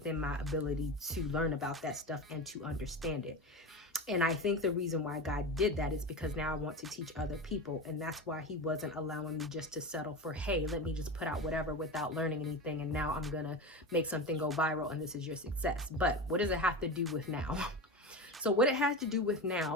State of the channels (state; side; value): normal; both; correlation 0.24